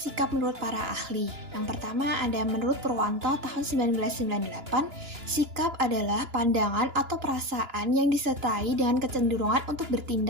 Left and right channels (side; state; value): left; late; 2.9 ms